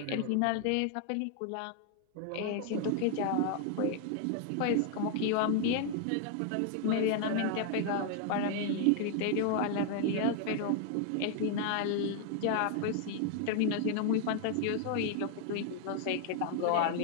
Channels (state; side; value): different; both; correlation 0.00